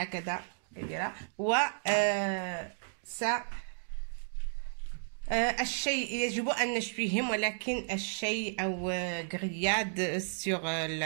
كبيرة، و الشيء يجب أن نشويهم، ولكن الشيء أو grillade sur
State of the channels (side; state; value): left; silent; digital silence